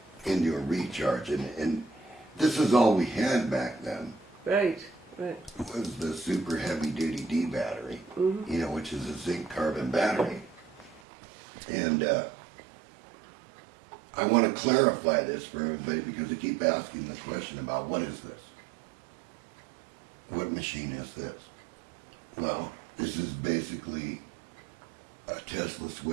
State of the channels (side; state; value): left; drops out; at 11.0 s